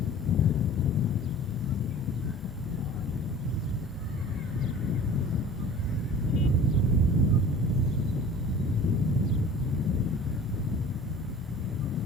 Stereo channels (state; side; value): normal; both; correlation 0.43